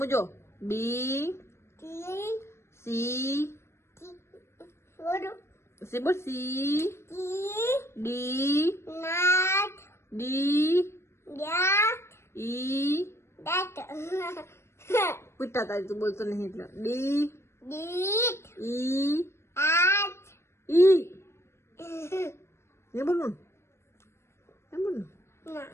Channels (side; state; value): right; late; 0.13 ms